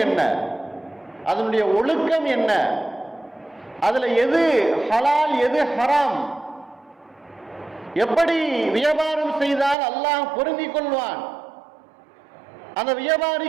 என்ன, அதனுடைய ஒழுக்கம் என்ன, அதுல எது ஹலால் எது ஹராம், எப்படி வியாபாரம் செய்தால் அல்லாஹ் பொருந்திக் கொள்வான், அந்த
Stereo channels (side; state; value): left; drops out; at 9.8 s